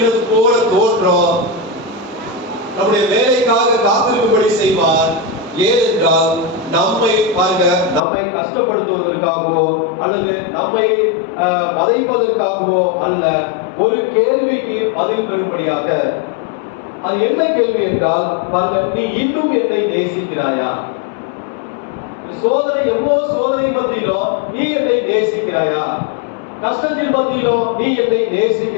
போல தோற்றம். நம்முடைய வேலைக்காக காத்திருக்கும்படி செய்வார். ஏனென்றால் நம்மை பாருங்க, நம்மை கஷ்டப்படுத்துவதற்காகவோ அல்லது நம்மை வதைப்பதற்காகவோ அல்ல, ஒரு கேள்விக்கு பதில் பெறும்படியாக. அது என்ன கேள்வி என்றால், பாருங்க, நீ இன்னும் என்னை நேசிக்கிறாயா? சோதனை, எவ்வளவு சோதனை மத்தியிலோ நீ என்னை நேசிக்கிறாயா? கஷ்டத்தின் மத்தியிலோ நீ என்னை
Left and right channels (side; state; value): right; drops out; at 8.0 s